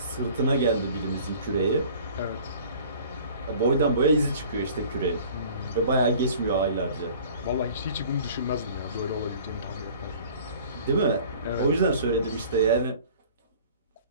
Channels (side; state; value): both; inverted; correlation -0.48